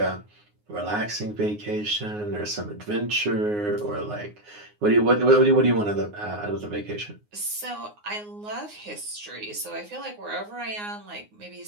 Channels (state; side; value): late; left; 9.6 ms